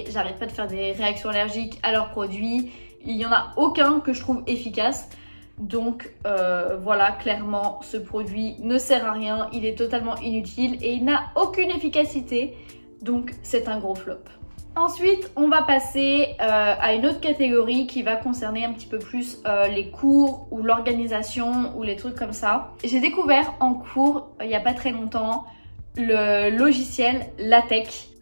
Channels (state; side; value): inverted; both; correlation -1.00